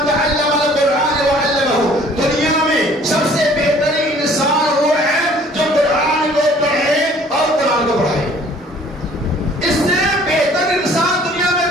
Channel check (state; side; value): normal; both; correlation 0.55